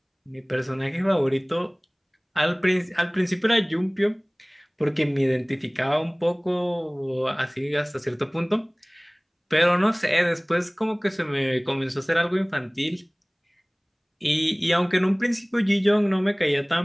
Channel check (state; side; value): identical; both; correlation 1.00